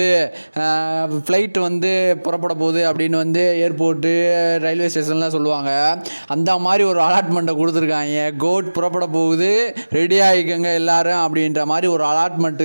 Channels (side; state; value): both; inverted; correlation -1.00